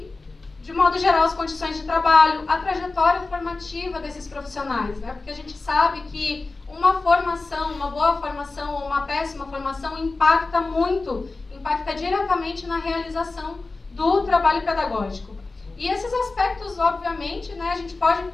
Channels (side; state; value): right; quieter; 3.5 dB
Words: de modo geral, as condições de trabalho, a trajetória formativa desses profissionais, né? Porque a gente sabe que uma formação, uma boa formação ou uma péssima formação impacta diretamente na realização do trabalho pedagógico. E esses aspectos, obviamente, né, a gente pode